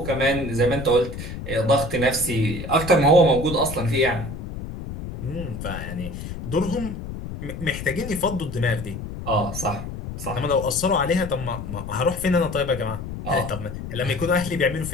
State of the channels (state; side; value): noise; left; rumble, 8 dB below the sound